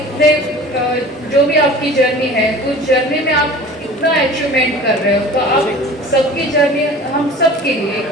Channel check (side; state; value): both; normal; correlation 0.41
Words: जो भी आपकी जर्नी है उस जर्नी में आप इतना अचीवमेंट कर रहे हो, तो आप सबकी जर्नी हम सब के लिए